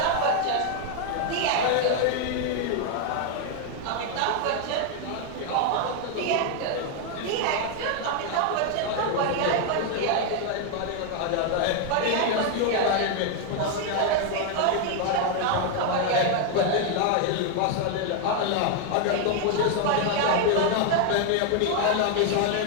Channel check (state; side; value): different; both; correlation 0.00